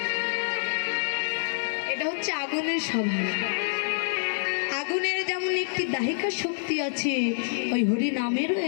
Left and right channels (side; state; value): right; silent; digital silence